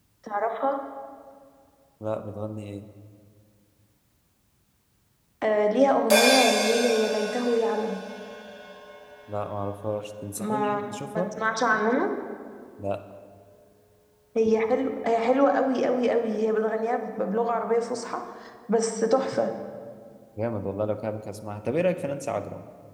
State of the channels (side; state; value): both; identical; correlation 1.00